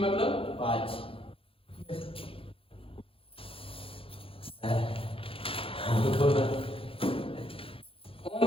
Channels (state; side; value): late; right; 0.27 ms